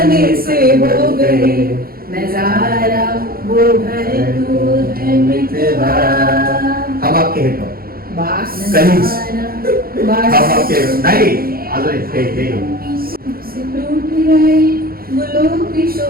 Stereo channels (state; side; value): late; left; 0.43 ms